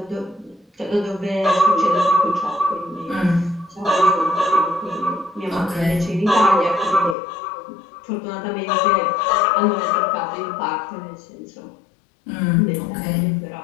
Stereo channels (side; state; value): right; drops out; at 7.2 s